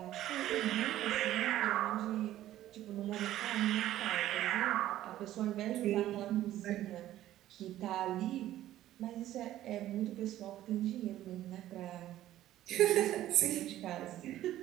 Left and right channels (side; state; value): left; quieter; 13.6 dB